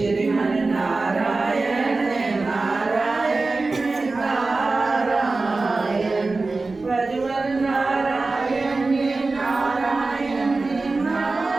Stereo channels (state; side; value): quieter; left; 3.6 dB